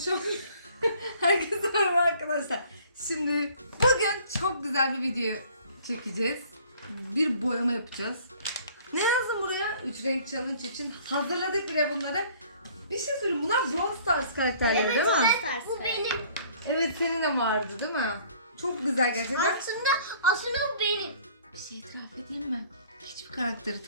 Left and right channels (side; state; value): both; inverted; correlation -0.54